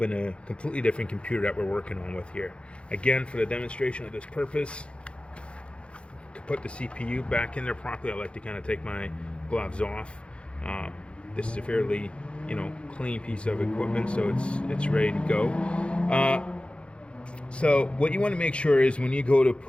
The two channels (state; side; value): late; right; 0.058 ms